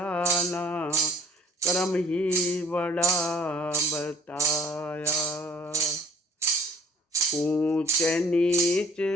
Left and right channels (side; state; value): both; normal; correlation 0.54